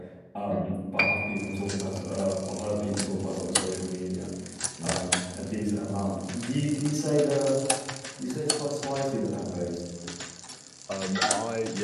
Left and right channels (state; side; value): identical; both; correlation 1.00